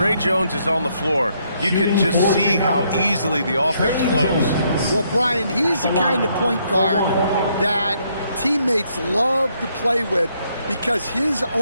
Jones is on the floor, you can just see how easily the offense flows. Well, Brian, he's the kind of point guard that teammates love to play with because his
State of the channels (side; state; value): both; inverted; correlation -0.72